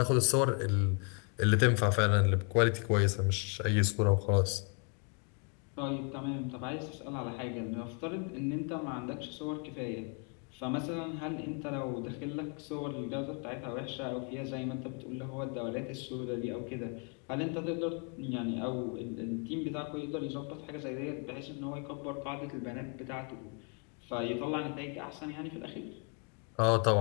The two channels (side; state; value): right; quieter; 38.5 dB